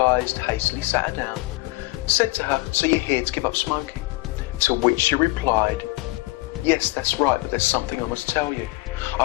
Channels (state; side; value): quieter; right; 22.9 dB